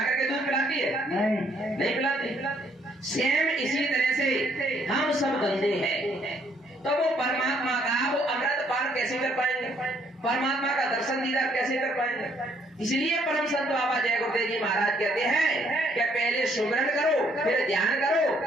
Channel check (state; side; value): normal; both; correlation 0.67